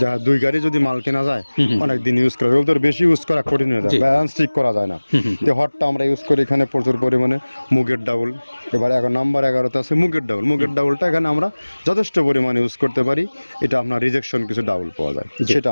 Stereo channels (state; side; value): inverted; both; correlation -1.00